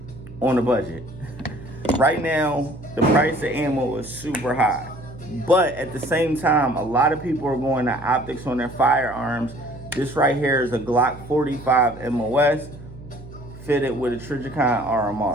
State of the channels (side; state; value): right; noise; hum, 16 dB below the sound